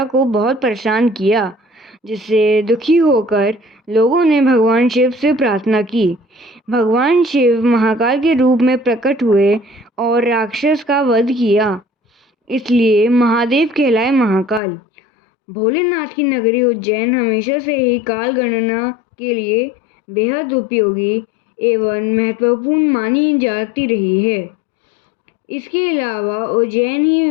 को बहुत परेशान किया, जिससे दुखी होकर लोगों ने भगवान शिव से प्रार्थना की। भगवान शिव महाकाल के रूप में प्रकट हुए और राक्षस का वध किया, इसलिए महादेव कहलाए महाकाल। भोलेनाथ की नगरी उज्जैन हमेशा से ही काल गणना के लिए बेहद उपयोगी एवं महत्वपूर्ण मानी जाती रही है। इसके अलावा उज्जैन ही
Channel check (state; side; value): drops out; right; at 14.6 s